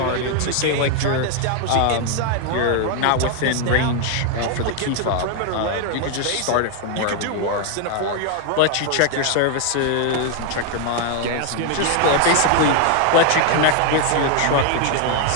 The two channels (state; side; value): different; both; correlation 0.00